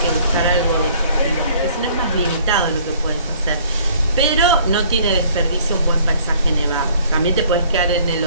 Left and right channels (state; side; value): inverted; both; correlation -0.56